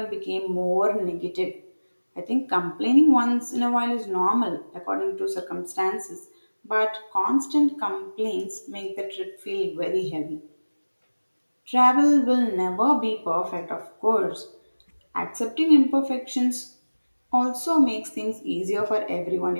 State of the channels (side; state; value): both; inverted; correlation -1.00